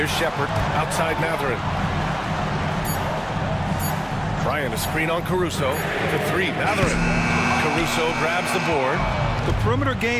Shepard outside Mathurin. Bryant a screen on Caruso. For 3, Mathurin. Caruso grabs the board. The perimeter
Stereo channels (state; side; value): identical; both; correlation 1.00